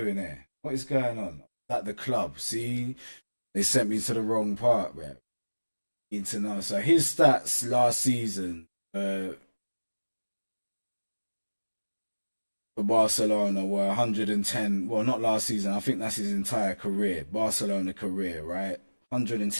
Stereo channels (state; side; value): inverted; both; correlation -1.00